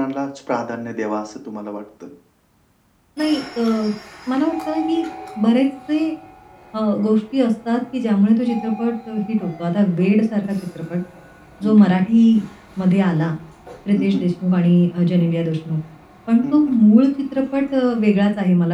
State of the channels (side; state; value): both; identical; correlation 1.00